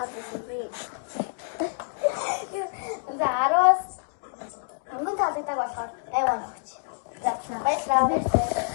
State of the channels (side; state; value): right; silent; digital silence